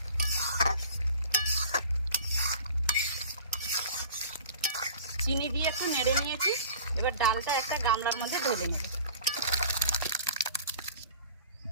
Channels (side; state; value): both; inverted; correlation -0.42